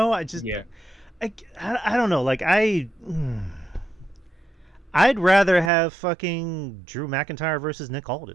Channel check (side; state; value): left; drops out; at 5.7 s